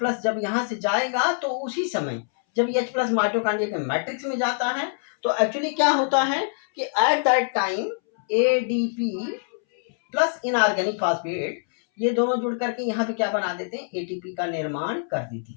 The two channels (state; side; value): silent; right; 62 dB below the other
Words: जब यहाँ से जाएगा तो उसी समय जब H+ माइटोकांड्रिया के मैट्रिक्स में जाता है तो एक्चुअली क्या होता है कि at that time ADP plus inorganic phosphate ये दोनों जुड़ करके यहाँ पे क्या बना देते हैं एटीपी का निर्माण कर देती